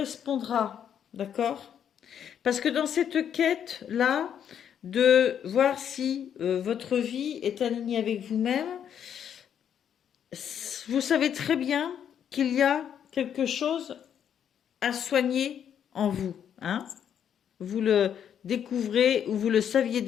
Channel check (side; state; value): right; quieter; 8.9 dB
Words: d'accord? Parce que dans cette quête-là, de voir si votre vie est alignée avec vous-même, vous savez très bien qu'il y a quelque chose à soigner en vous. Hein? Vous le découvrez ou vous le saviez